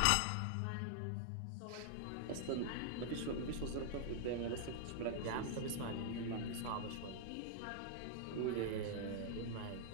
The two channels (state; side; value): different; both; correlation -0.01